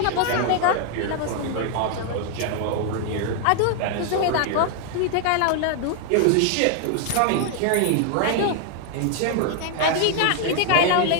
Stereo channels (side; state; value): both; different; correlation 0.00